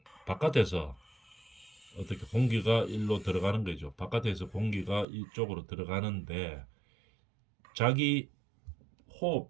바깥에서 어떻게 공기가 일로 들어가는 거죠. 바깥에서 공기가 이쪽으로 들어가는데 자기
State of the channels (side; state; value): left; drops out; at 5.1 s